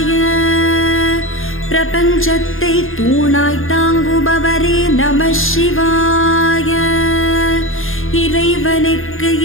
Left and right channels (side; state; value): right; late; 0.60 ms